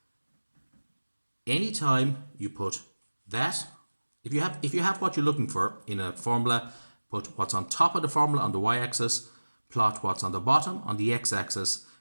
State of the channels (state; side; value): inverted; both; correlation -1.00